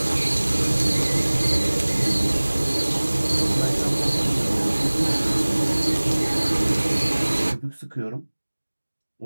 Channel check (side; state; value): both; inverted; correlation -1.00